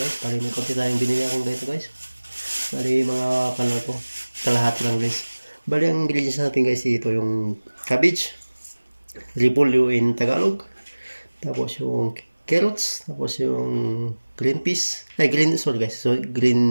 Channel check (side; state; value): both; inverted; correlation -1.00